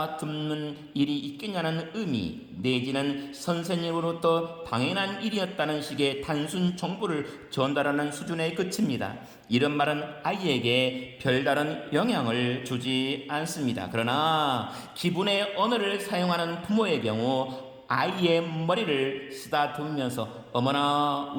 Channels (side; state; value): both; identical; correlation 1.00